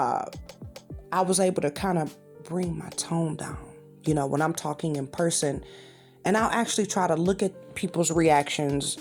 was able to kind of bring my tone down, you know, when I'm talking in person. And I'll actually try to look at people's reactions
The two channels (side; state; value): both; identical; correlation 1.00